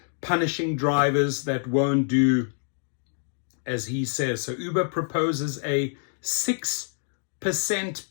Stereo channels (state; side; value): silent; right; 61 dB below the other